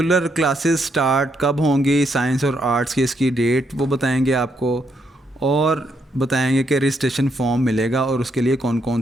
क्लासेस स्टार्ट कब होंगी, साइंस और आर्ट्स की इसकी डेट वो बताएंगे आपको, और बताएंगे कि रजिस्ट्रेशन फॉर्म मिलेगा और उसके लिए कौन कौन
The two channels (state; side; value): normal; both; correlation 0.76